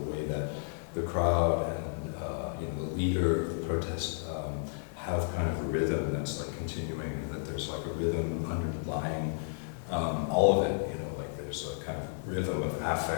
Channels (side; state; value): right; silent; digital silence